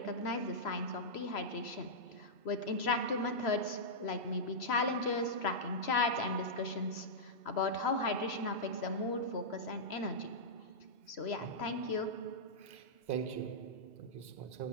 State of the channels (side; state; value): right; late; 3.0 ms